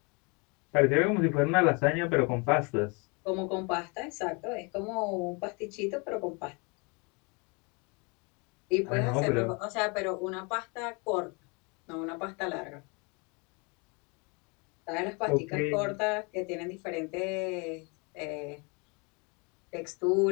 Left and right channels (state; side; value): quieter; right; 31.2 dB